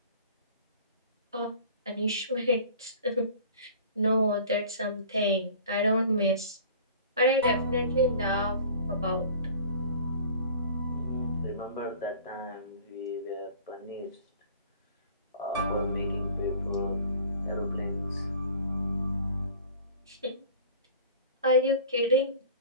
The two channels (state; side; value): inverted; both; correlation -0.45